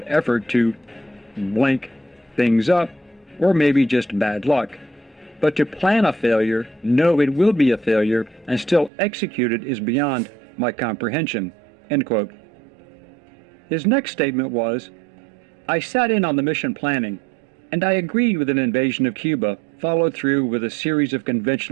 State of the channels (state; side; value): drops out; left; at 8.9 s